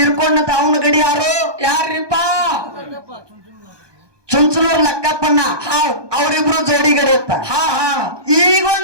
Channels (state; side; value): late; left; 1.2 ms